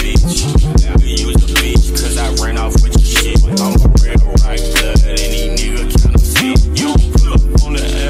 I use the bitch cause I ran off with your shit. I'm a real right blood. Any nigga counterfeit. You pull up on the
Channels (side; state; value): both; identical; correlation 1.00